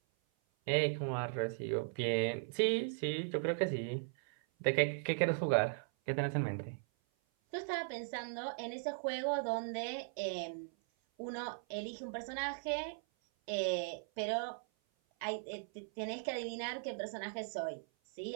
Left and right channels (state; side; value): silent; left; 52 dB below the other